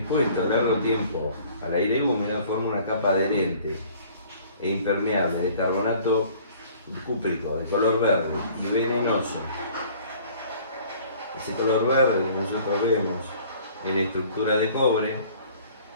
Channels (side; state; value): both; inverted; correlation -0.52